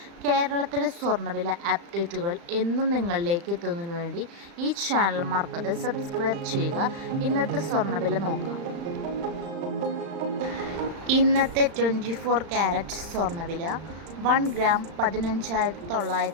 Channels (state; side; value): late; left; 35 ms